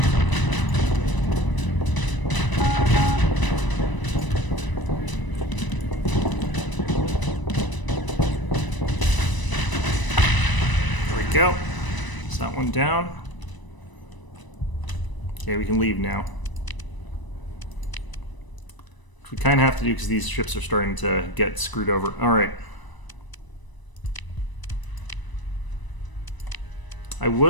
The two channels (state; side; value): late; right; 1.0 ms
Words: Go. Is that one down? Okay, we can leave now. Which we kind of have to do because these ships are starting to get screwed over. Alright. I